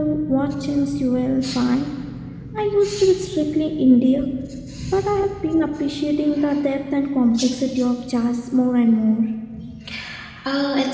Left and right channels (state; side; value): identical; both; correlation 1.00